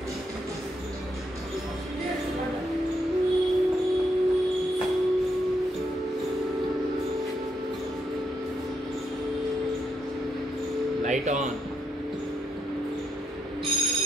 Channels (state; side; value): normal; both; correlation 0.79